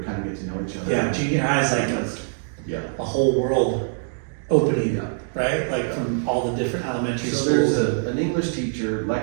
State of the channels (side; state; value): left; silent; digital silence